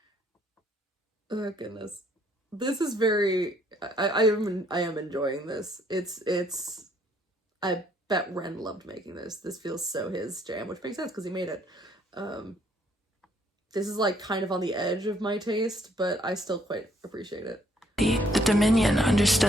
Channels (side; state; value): both; normal; correlation 0.66